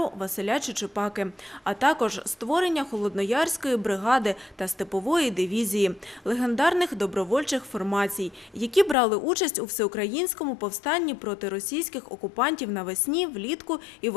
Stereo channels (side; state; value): right; drops out; at 9.0 s